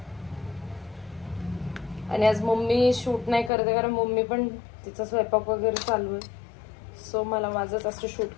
आणि आज मम्मी शूट नाही करते कारण मम्मी पण तिचा स्वयंपाक वगैरे चालू आहे. सो मला माझंच असं शूट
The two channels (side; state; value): right; drops out; at 3.5 s